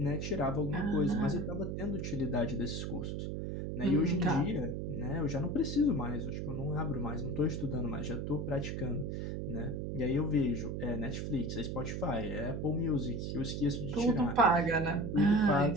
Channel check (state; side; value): noise; right; hum, 3 dB below the sound